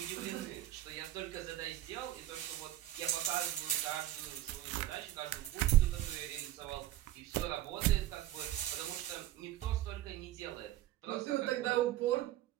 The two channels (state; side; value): quieter; left; 13.7 dB